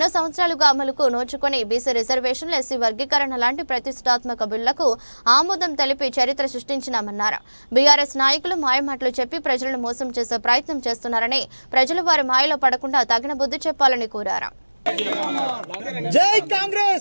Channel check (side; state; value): both; inverted; correlation -1.00